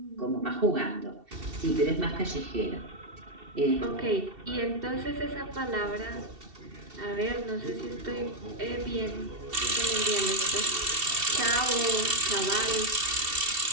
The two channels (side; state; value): left; late; 2.7 ms